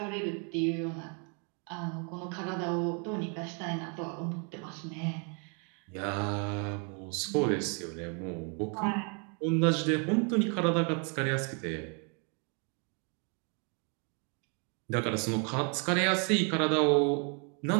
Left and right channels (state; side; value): quieter; left; 37.5 dB